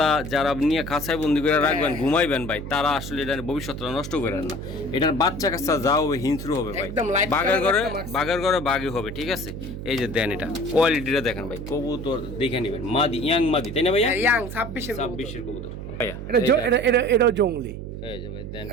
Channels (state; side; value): noise; right; hum, 8 dB below the sound